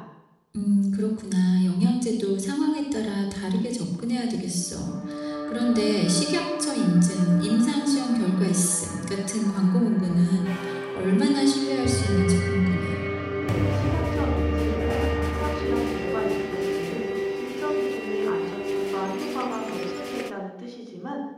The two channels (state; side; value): identical; both; correlation 1.00